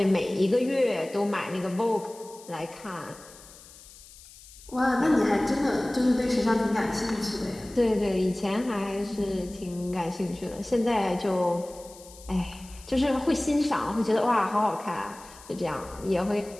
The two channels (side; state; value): left; noise; hiss, 20 dB below the sound